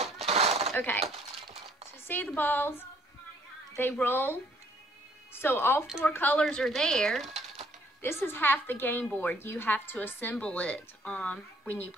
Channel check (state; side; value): normal; both; correlation 0.63